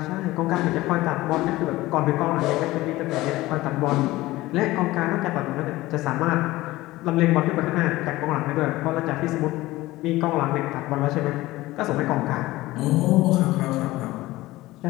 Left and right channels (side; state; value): right; quieter; 18.2 dB